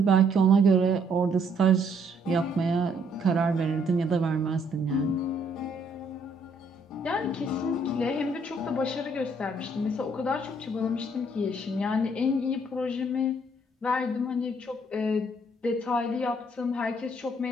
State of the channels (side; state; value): both; normal; correlation 0.67